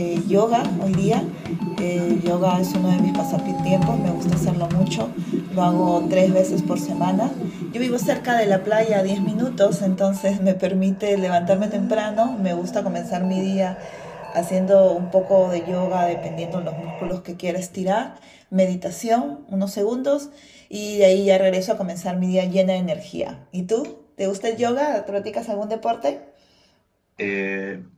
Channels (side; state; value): both; identical; correlation 1.00